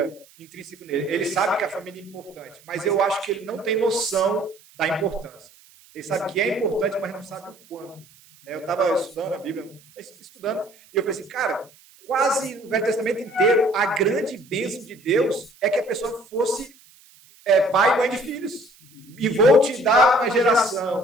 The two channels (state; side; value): noise; right; hiss, 27 dB below the sound